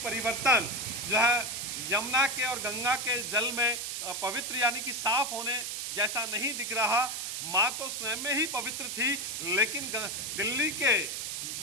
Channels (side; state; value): right; noise; hiss, 4 dB below the sound